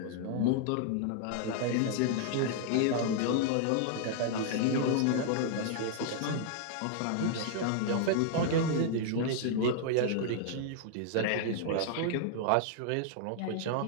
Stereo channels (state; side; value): different; both; correlation -0.01